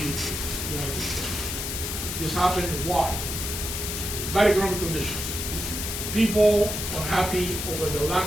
States. This happened why? Bad economic conditions. People unhappy over the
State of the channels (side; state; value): left; noise; hiss, 4 dB below the sound